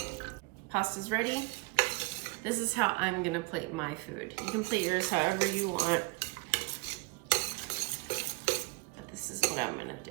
Pasta's ready. This is how I'm gonna plate my food. You can plate yours however you want, but this is what I'm gonna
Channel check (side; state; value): left; quieter; 28.4 dB